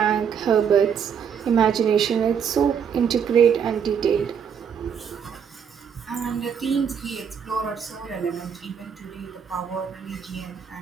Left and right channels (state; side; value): quieter; left; 7.4 dB